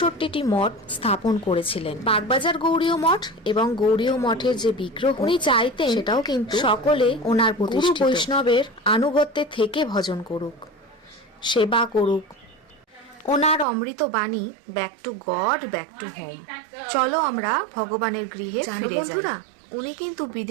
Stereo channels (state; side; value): drops out; left; at 13.7 s